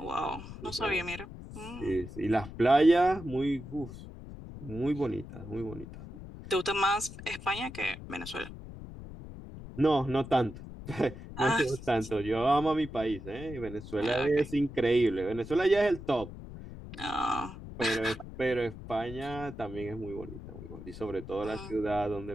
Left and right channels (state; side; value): noise; left; rumble, 13 dB below the sound